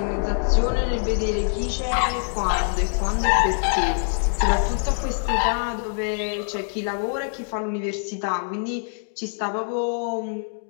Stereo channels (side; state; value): right; silent; digital silence